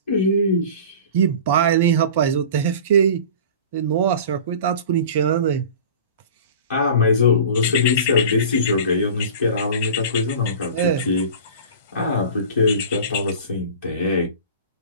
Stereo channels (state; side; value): inverted; both; correlation -0.38